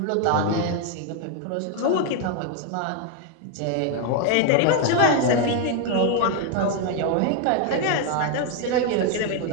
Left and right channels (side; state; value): both; different; correlation 0.01